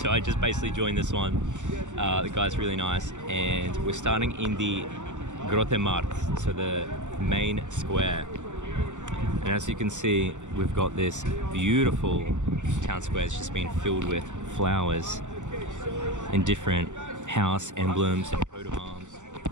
I just basically joined this one. The guy's really nice, and we're starting in the Grote Markt, so the main square. And as you can see, we've got this beautiful town square. It's just been filled with flowers and different house emblems and coat of arms.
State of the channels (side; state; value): left; late; 0.85 ms